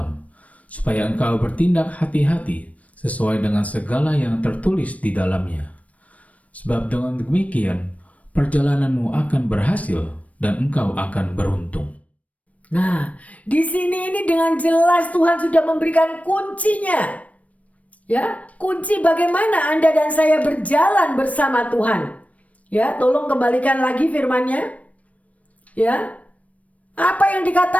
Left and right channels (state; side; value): late; right; 0.067 ms